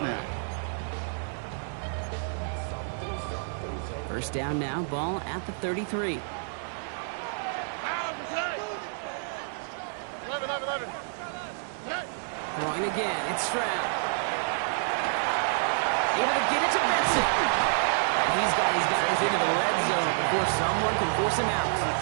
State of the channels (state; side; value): silent; left; digital silence